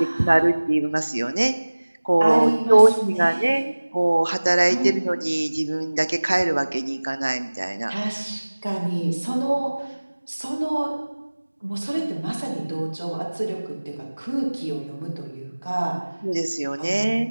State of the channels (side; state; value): both; inverted; correlation -1.00